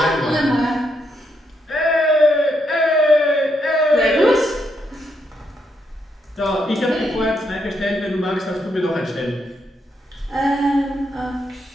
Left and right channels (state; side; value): normal; both; correlation 0.78